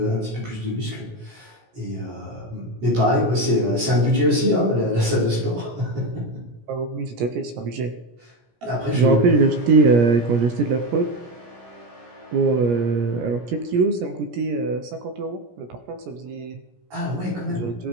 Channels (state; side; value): late; left; 17 ms